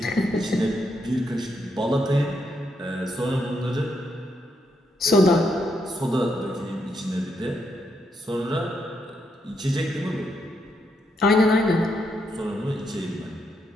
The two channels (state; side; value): normal; both; correlation 0.78